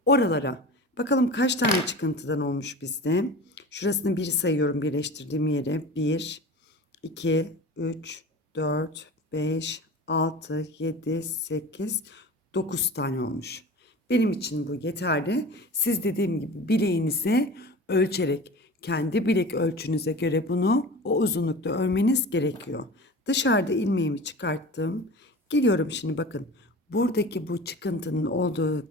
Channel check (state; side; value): normal; both; correlation 0.36